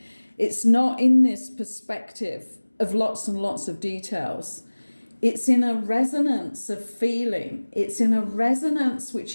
It's not in this perspective of lots and lots of details. It's in a resonance of feeling. It's in a resonance which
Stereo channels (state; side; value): inverted; both; correlation -1.00